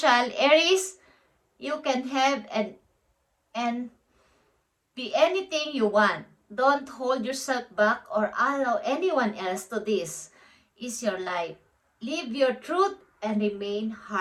Aries, you can have and be anything you want. Don't hold yourself back or allow anyone else to this. Is your life. Live your truth and remain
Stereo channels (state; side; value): identical; both; correlation 1.00